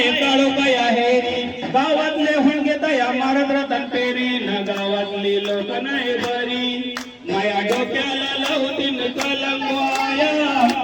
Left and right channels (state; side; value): identical; both; correlation 1.00